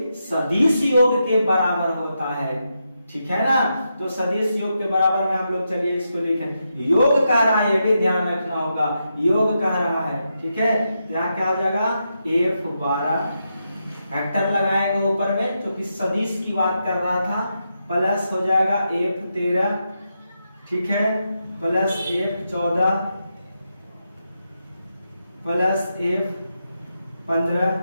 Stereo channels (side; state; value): both; inverted; correlation -0.85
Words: सदिश योग के बराबर होता है, ठीक है ना। तो सदिश योग के बराबर में हम लोग चलिए इसको लिखें। योग कह रहा है, ये भी ध्यान रखना होगा, योग कह रहा है, ठीक है। यहाँ क्या हो जाएगा F12, वेक्टर लगाएंगे ऊपर में, क्योंकि सदिश की बात कर रहा था, प्लस हो जाएगा F13, ठीक है, प्लस F14, प्लस F15,